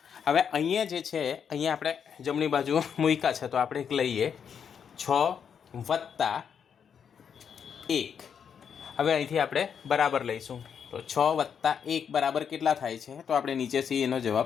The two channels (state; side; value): quieter; right; 7.4 dB